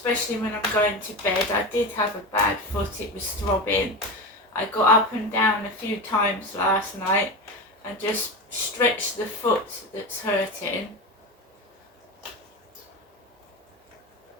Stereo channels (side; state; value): both; normal; correlation 0.23